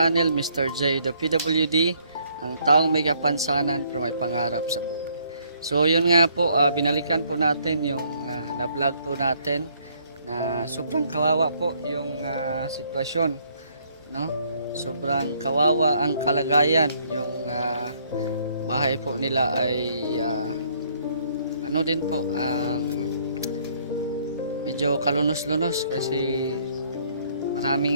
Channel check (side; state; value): both; inverted; correlation -0.66